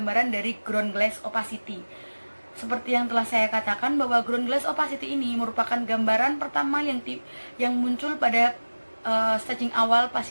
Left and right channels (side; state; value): both; inverted; correlation -1.00